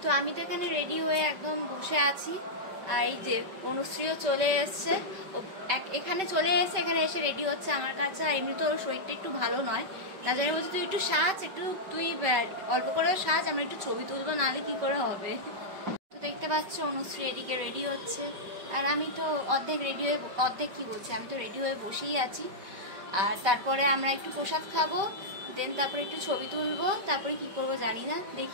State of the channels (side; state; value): left; late; 5.2 ms